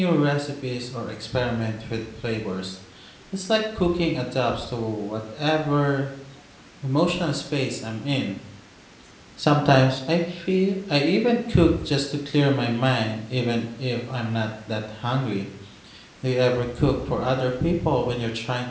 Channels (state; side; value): identical; both; correlation 1.00